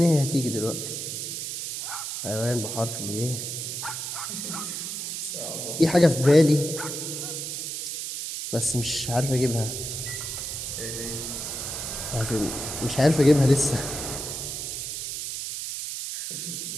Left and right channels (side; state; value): right; noise; hiss, 5 dB below the sound